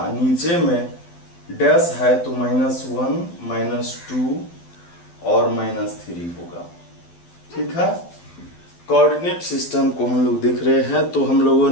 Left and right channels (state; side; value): late; right; 12 ms